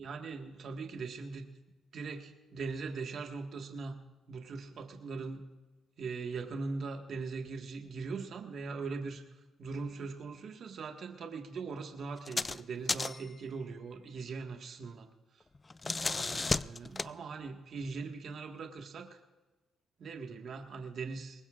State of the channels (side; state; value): both; normal; correlation 0.86